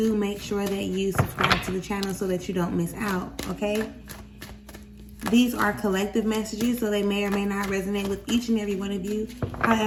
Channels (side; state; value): both; identical; correlation 1.00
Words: make sure that you subscribe to the channel so that you don't miss out, okay? These are collective messages, so they may or may not resonate with each and every one of you.